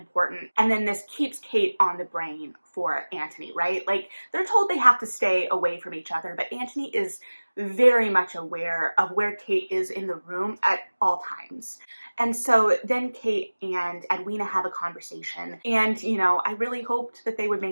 And then this keeps Kate on the brain for Anthony, right? Like, they're told they have to stay away from each other, but Anthony is very much aware of where Kate is in the room at all times. And so then Kate and Edwina have a conversation. And, you know, I really hoped that they would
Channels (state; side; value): inverted; both; correlation -1.00